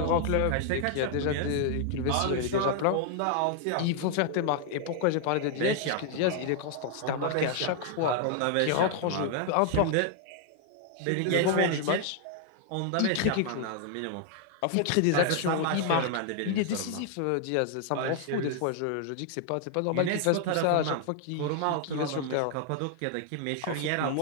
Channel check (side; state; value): both; different; correlation 0.00